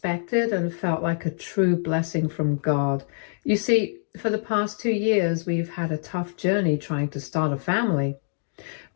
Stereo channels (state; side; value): silent; right; digital silence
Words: and felt like a true blessing from God. You see, for the past 2 years, we've had a tough journey trying to start a family.